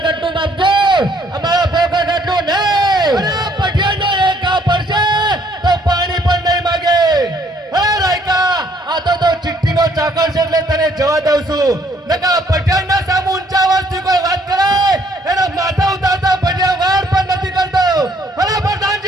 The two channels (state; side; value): normal; both; correlation 0.65